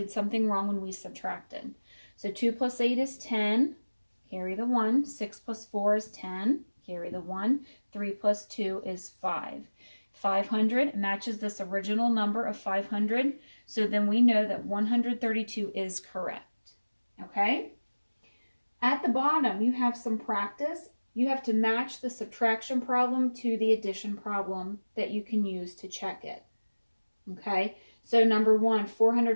something wrong when we subtracted. So 2 plus 8 is 10, carry the 1. 6 plus 4 is 10, carry the 1. 3 plus 2 is 5. 500 matches this original number of 500, so then we know that 132 is correct, okay? At the bottom, you have some practice. You have to match the subtraction problem to the addition problem that you can use to check it, okay? So number 1,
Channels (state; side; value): inverted; both; correlation -1.00